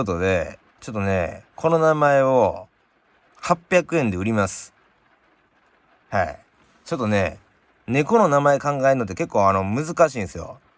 とで、ちょっとね、この名前を800円で売ります。はい。ちょっとね、猫の名前考えるのって結構難しいんですよ。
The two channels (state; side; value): identical; both; correlation 1.00